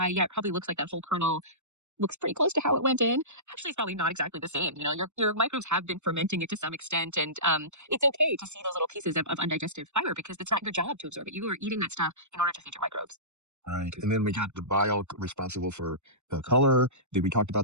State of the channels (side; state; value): left; late; 0.83 ms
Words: yeah, it probably looks like that whole kernel looks pretty close to how it went in. Actually, it's probably not exactly the same. Your microbes have been fermenting it to some extent, and it's okay to see those little pieces of undigested fiber because it's not your job to absorb it. You are eating that stuff in order to feed your microbes. Right. And then we got the bile responsible for the color. Then we talked